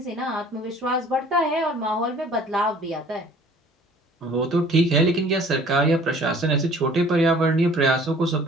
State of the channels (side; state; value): both; normal; correlation 0.51